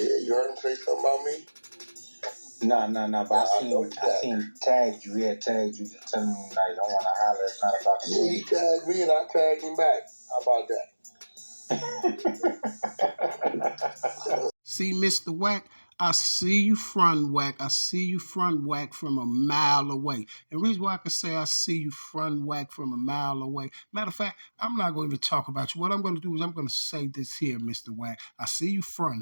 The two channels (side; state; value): both; inverted; correlation -1.00